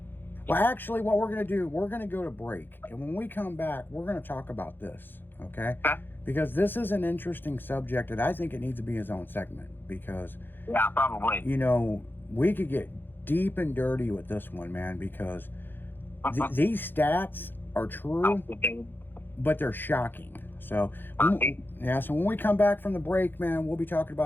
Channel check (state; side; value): late; right; 0.097 ms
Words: Well, actually, what we're going to do, we're going to go to break. And when we come back, we're going to talk about this, okay? Because this is an interesting subject, and I think it needs to be its own segment. Because, Yeah, probably. you know, we could get deep and dirty with this one, man, because these stats are true, but they're shocking. So, so when we come back from the break, man, we'll be talking